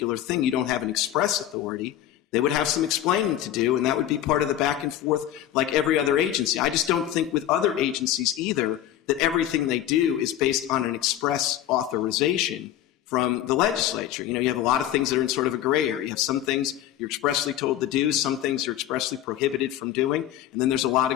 thing? You don't have an express authority. They would have some explaining to do, and that would be part of the back and forth like every other agency. I just don't think with other agencies either that everything they do is based on an express authorization from the legislature. You have a lot of things that are in sort of a gray area. You have some things you're expressly told to do, some things you're expressly prohibited from doing, and then there's a lot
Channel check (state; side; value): quieter; right; 12.0 dB